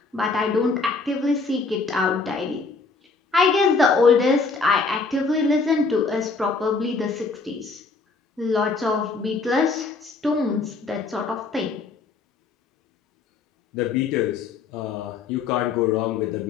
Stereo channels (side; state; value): right; quieter; 4.3 dB